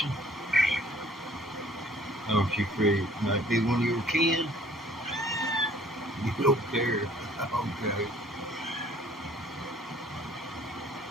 Oh, she free. Might be one of your kin. You don't care. Okay.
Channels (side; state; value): both; normal; correlation 0.56